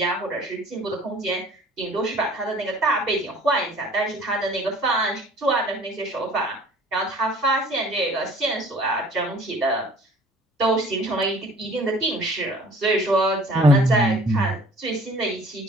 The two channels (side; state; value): both; normal; correlation 0.50